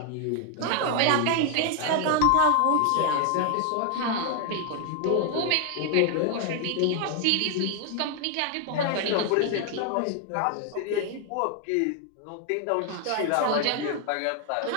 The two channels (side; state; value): both; different; correlation 0.00